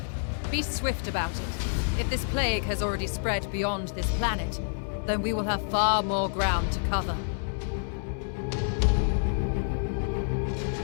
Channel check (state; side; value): silent; right; digital silence